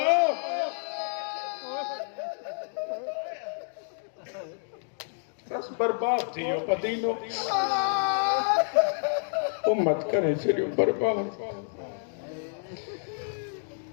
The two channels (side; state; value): right; silent; digital silence